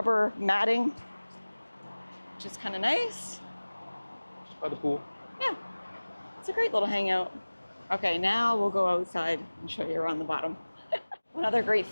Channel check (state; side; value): inverted; both; correlation -1.00